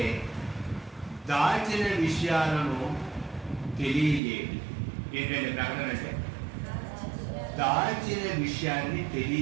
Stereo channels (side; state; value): left; drops out; at 4.2 s